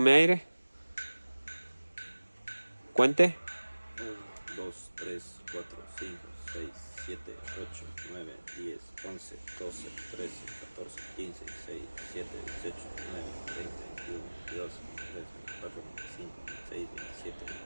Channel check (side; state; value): both; inverted; correlation -1.00